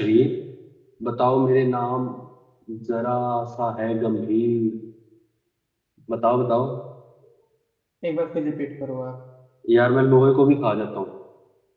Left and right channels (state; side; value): identical; both; correlation 1.00